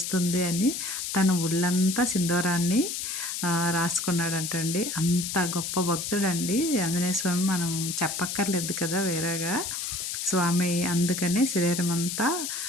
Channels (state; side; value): noise; left; hiss, 4 dB below the sound